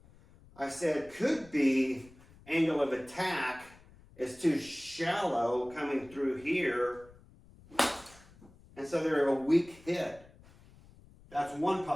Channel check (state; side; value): noise; left; rumble, 24 dB below the sound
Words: I said, could be angle of attack is too shallow coming through here, and so they're a weak hit. That's one